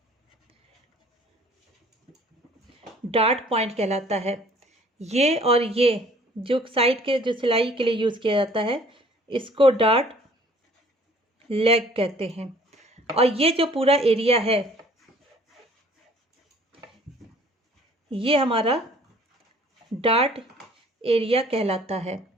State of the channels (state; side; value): normal; both; correlation 0.55